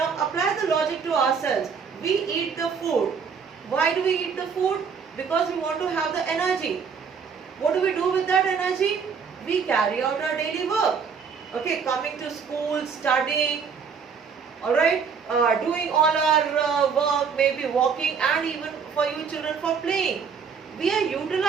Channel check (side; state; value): left; quieter; 6.2 dB